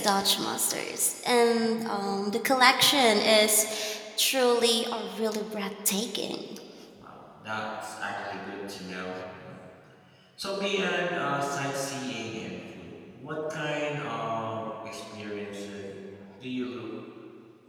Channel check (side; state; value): both; identical; correlation 1.00